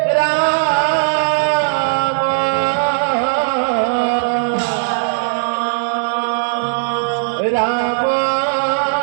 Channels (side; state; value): left; silent; 62 dB below the other